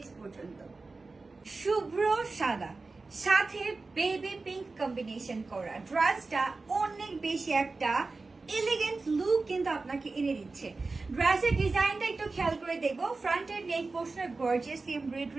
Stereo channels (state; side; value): quieter; left; 3.7 dB